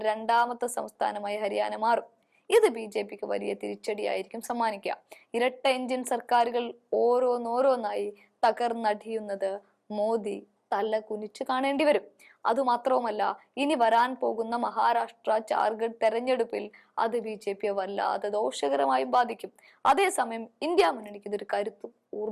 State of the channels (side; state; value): both; identical; correlation 1.00